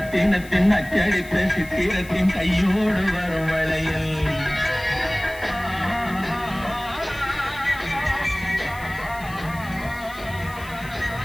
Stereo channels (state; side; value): noise; left; hiss, 20 dB below the sound